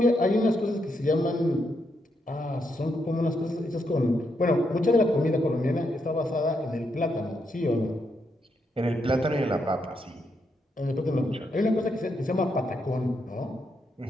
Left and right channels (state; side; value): normal; both; correlation 0.80